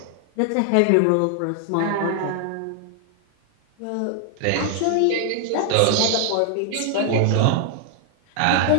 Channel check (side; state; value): both; different; correlation 0.00